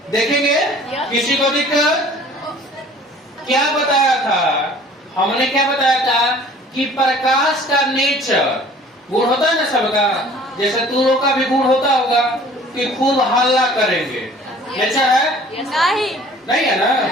किसी को दिक्कत? क्या बताया था हमने? क्या बताया था कि प्रकाश का नेचर गुण होता है ना सबका। जैसे तू लोग का भी गुण होता होगा कि खूब हल्ला करेंगे। नेचर है? नहीं है ना?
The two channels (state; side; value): normal; both; correlation 0.50